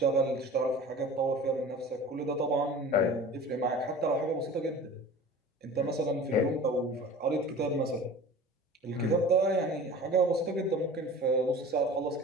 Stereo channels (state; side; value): normal; both; correlation 0.40